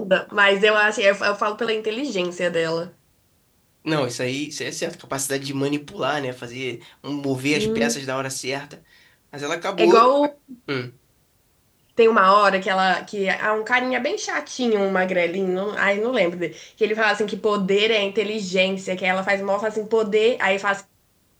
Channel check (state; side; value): identical; both; correlation 1.00